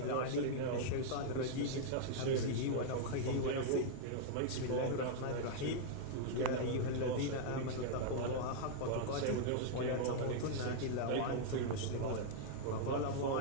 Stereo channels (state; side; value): different; both; correlation -0.01